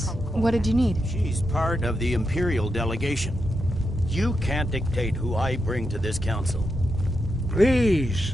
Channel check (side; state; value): both; normal; correlation 0.85